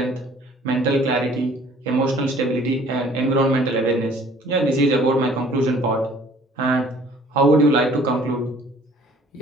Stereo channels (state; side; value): normal; both; correlation 0.54